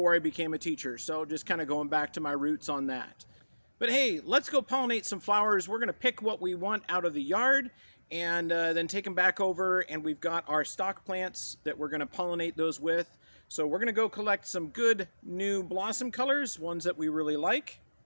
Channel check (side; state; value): both; inverted; correlation -1.00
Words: I became a teacher. So just kind of going back to my roots on that. But hey, let's go pollinate some flowers. We're going to pick what we want out of the yard and then take them back over. And we've got our stock plants that we're going to pollinate those with. So we're going to go collect some good new blossom colors, ones that we really like.